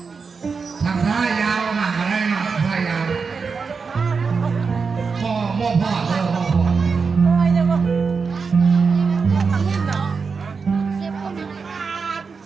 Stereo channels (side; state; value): left; quieter; 5.1 dB